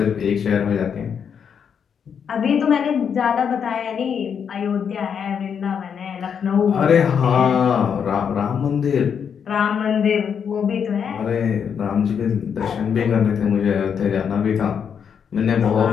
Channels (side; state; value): right; quieter; 7.3 dB